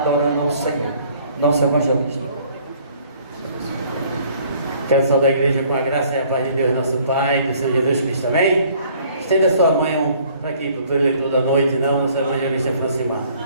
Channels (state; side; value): inverted; both; correlation -0.58